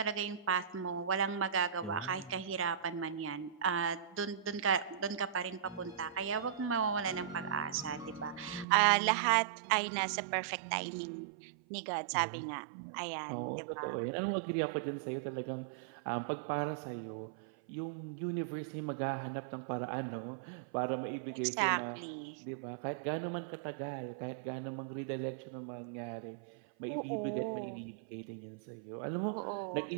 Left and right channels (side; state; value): left; drops out; at 8.7 s